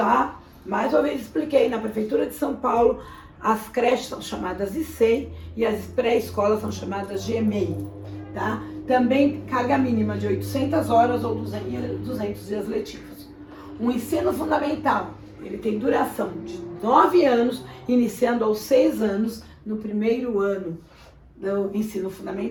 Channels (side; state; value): both; identical; correlation 1.00